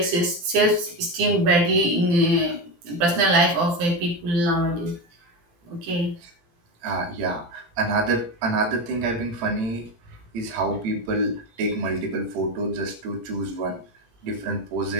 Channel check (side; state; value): left; late; 17 ms